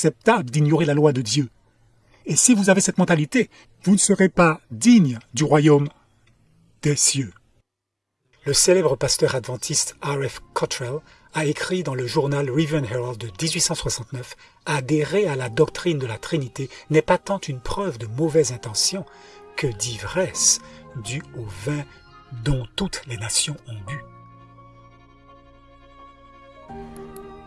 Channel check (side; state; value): both; identical; correlation 1.00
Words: d'ignorer la loi de Dieu. Et si vous avez cette mentalité, vous ne serez pas digne du royaume des cieux. Le célèbre pasteur adventiste R.F. Cottrell a écrit dans le journal Review and Herald de 1869 « Adhérer à la doctrine de la Trinité n'est pas tant une preuve de mauvaise intention que d'ivresse due au vin dont toutes les nations ont bu. »